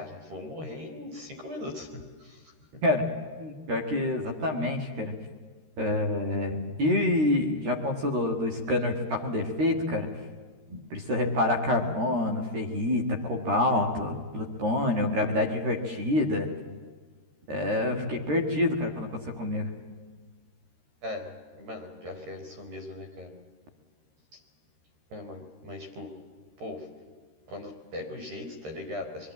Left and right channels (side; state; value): left; late; 13 ms